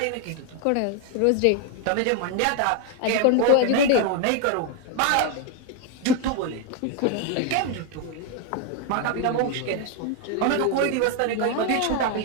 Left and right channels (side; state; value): both; different; correlation 0.01